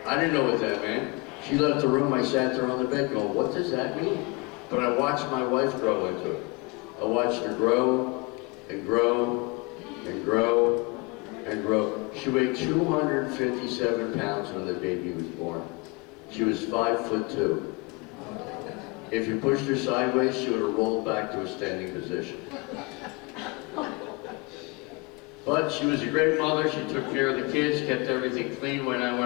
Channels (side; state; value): right; quieter; 28.4 dB